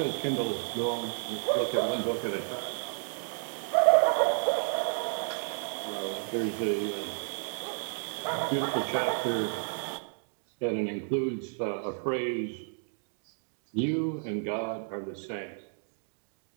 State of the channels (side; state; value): left; silent; 57 dB below the other